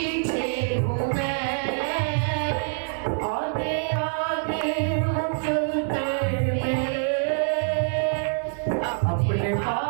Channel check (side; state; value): left; silent; digital silence